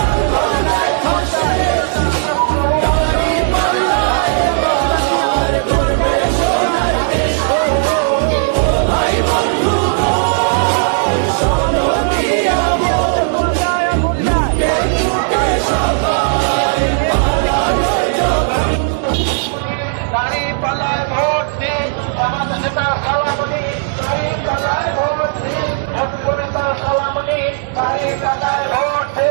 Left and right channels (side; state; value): left; silent; digital silence